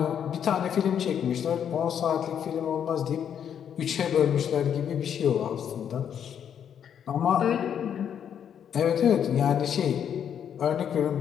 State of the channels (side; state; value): right; quieter; 8.7 dB